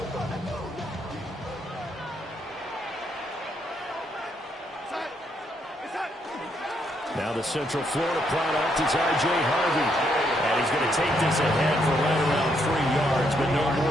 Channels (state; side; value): normal; both; correlation 0.75